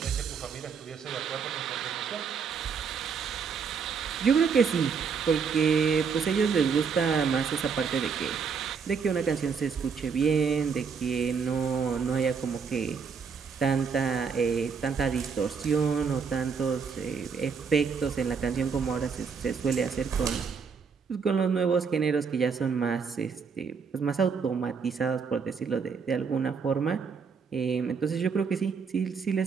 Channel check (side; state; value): left; quieter; 5.9 dB